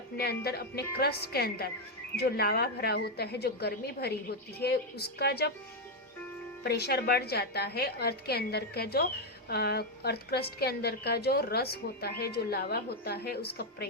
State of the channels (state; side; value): normal; both; correlation 0.02